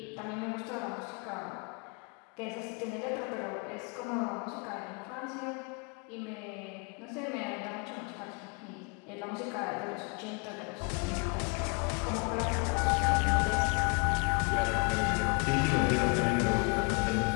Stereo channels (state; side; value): quieter; right; 35.2 dB